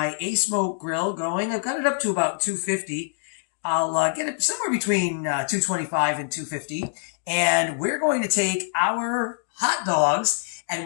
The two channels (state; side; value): silent; right; digital silence